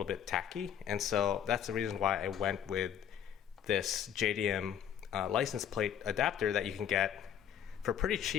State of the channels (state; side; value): quieter; right; 9.3 dB